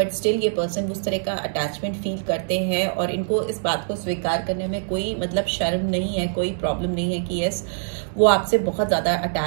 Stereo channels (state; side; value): silent; left; digital silence